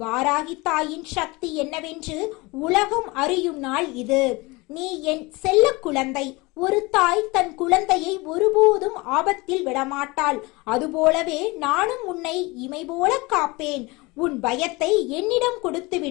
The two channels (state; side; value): quieter; right; 24.0 dB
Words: வாராகி தாயின் சக்தி என்னவென்று உலகம் அறியும் நாள் இது. நீ என் செல்ல குழந்தை. ஒரு தாய் தன் குழந்தையை ஒருபோதும் ஆபத்தில் விடமாட்டாள். அதுபோலவே நானும் உன்னை இமை போல காப்பேன். உன் பயத்தை என்னிடம்